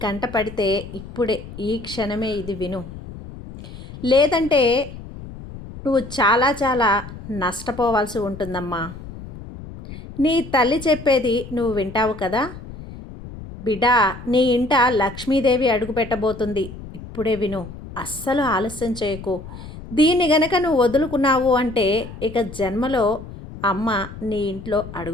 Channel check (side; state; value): left; noise; rumble, 13 dB below the sound